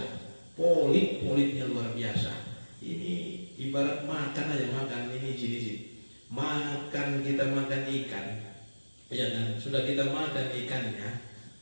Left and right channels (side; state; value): both; inverted; correlation -1.00